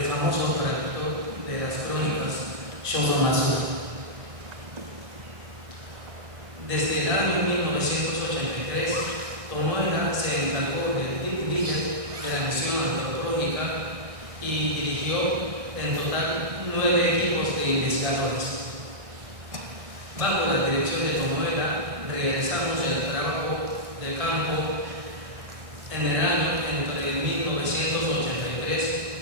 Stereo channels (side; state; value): left; late; 1.6 ms